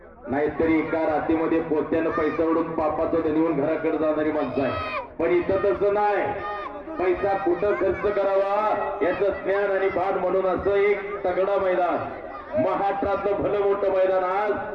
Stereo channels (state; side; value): identical; both; correlation 1.00